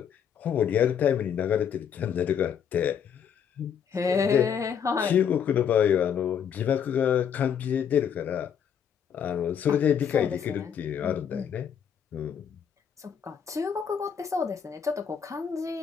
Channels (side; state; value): right; quieter; 7.9 dB